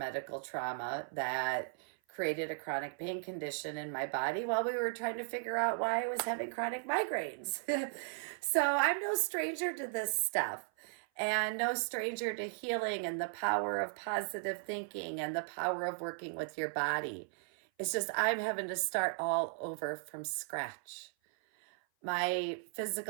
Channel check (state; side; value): silent; left; 54 dB below the other